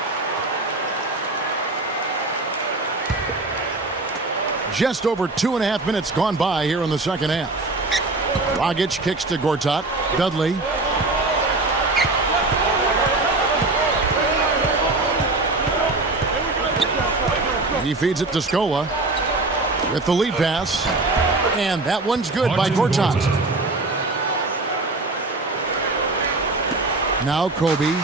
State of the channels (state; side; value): quieter; left; 3.1 dB